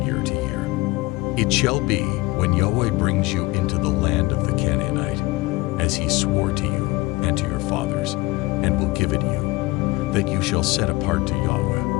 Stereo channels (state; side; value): quieter; right; 21.8 dB